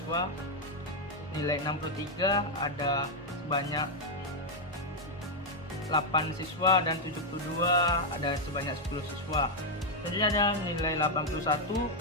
nilai 63 ada sebanyak 8 siswa, dan 72 ada sebanyak 10 siswa. Selanjutnya ada nilai 81,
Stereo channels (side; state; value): both; normal; correlation 0.00